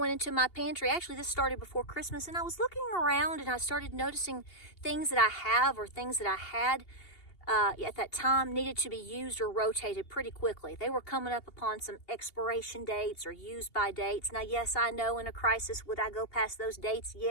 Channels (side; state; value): right; late; 2.8 ms